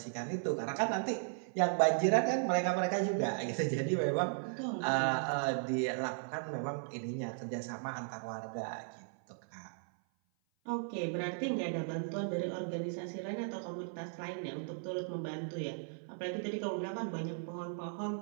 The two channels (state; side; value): silent; left; 54 dB below the other